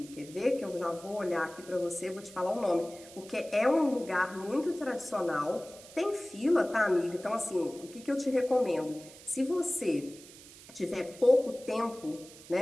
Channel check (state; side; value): noise; right; hiss, 19 dB below the sound